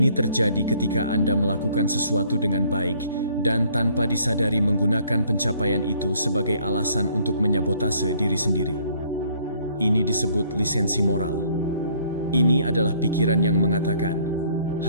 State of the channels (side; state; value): both; inverted; correlation -0.62